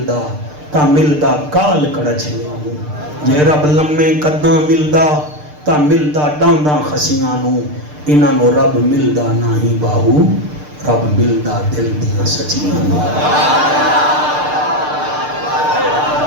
تا ملدا کال کڑچھیاں نو، جے رب لمے قداں ملدا تا ملدا ڈانداں خسیاں نو، انہاں نو رب ملدا نہ ہی باہو، رب ملدا دل دیاں سچیاں نو۔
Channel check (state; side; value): late; left; 6.7 ms